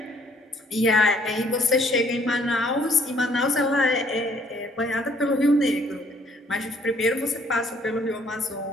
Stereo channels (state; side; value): normal; both; correlation 0.62